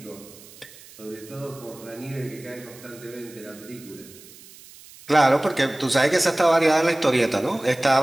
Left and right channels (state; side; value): noise; right; hiss, 21 dB below the sound